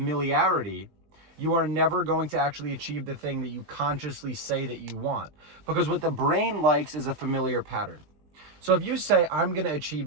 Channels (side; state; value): left; late; 20 ms